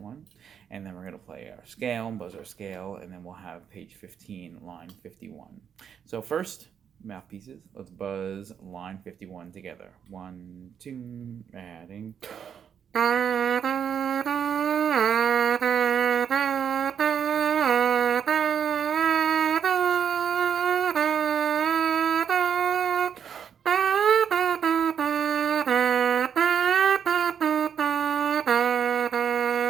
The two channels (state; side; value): quieter; left; 8.0 dB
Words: one. And then we're going to play our scale, buzz our scale, and then we'll have page 15, line 51. So first, mouthpieces. Let's buzz line 51 together. 1, 2, adding.